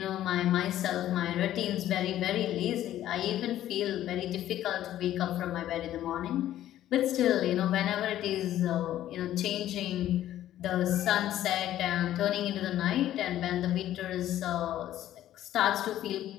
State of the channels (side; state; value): right; quieter; 12.7 dB